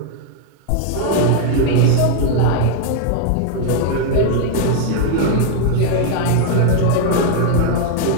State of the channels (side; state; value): both; different; correlation 0.00